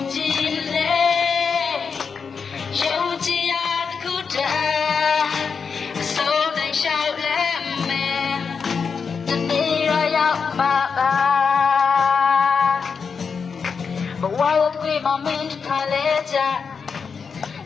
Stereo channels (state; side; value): quieter; right; 5.7 dB